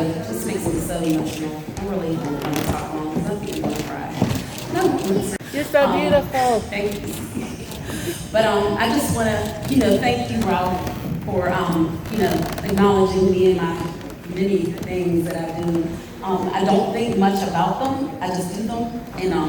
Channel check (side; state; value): both; identical; correlation 1.00